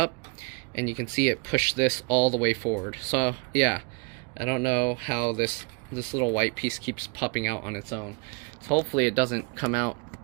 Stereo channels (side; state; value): left; quieter; 31.6 dB